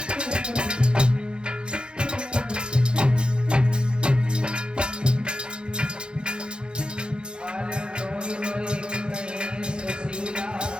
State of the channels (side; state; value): left; late; 0.051 ms